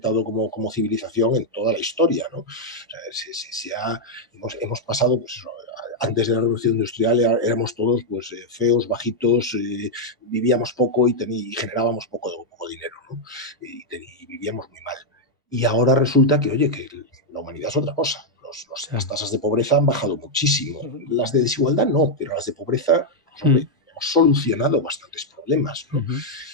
como civilización en toda la historia, ¿no? O sea, hemos pasado, pues eso, antes de la revolución industrial éramos todos, pues, feos, bajitos, vivíamos poco y generábamos poco dinero, ¿no? Y vivíamos muy mal. Y ahora resulta que, oye, que la humanidad es otra cosa. Las Claro. tasas de pobreza han bajado muchísimo. Las de desigualdad no, pero las de pobreza, pues, Mm. hombre, hemos solucionado bastantes problemas, ¿no? Ujú.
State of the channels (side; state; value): both; normal; correlation -0.01